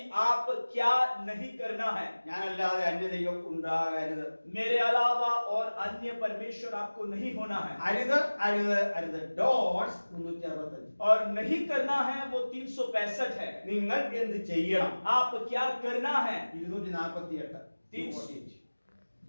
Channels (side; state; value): both; inverted; correlation -1.00